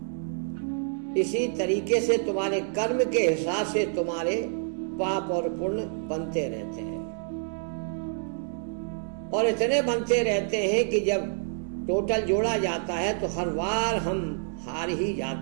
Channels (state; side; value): silent; left; digital silence